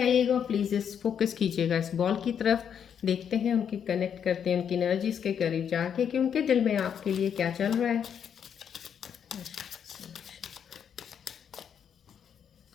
प्लीज़ इस फोकस कीजिएगा इस बॉल की तरफ। देखते हैं उनकी कनेक्ट करते हैं उनकी एनर्जीज के करीब जाके कि उनके दिल में आपके लिए क्या चल रहा है।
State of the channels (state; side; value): quieter; right; 8.1 dB